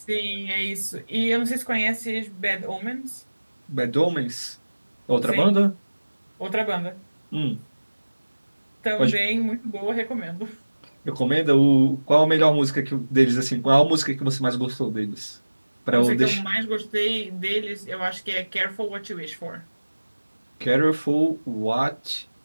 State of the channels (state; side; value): inverted; both; correlation -1.00